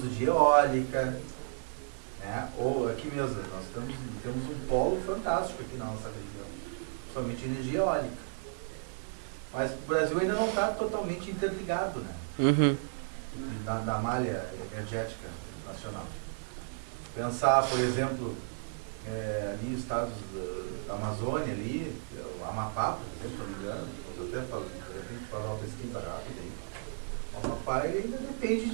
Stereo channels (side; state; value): left; silent; digital silence